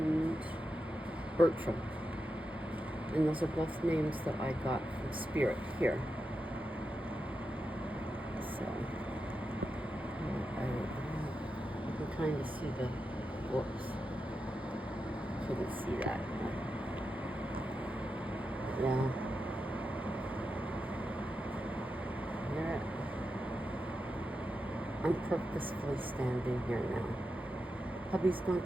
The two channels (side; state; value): both; normal; correlation 0.88